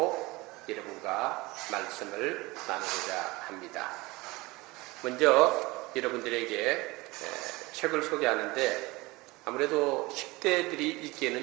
여러분과 말씀을 나누고자 합니다. 먼저 여러분들에게 책을 소개하는데 아무래도 10대들이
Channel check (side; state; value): left; quieter; 22.3 dB